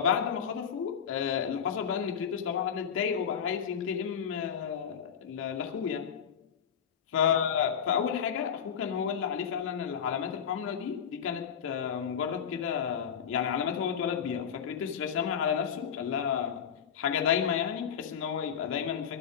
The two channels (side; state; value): right; quieter; 7.8 dB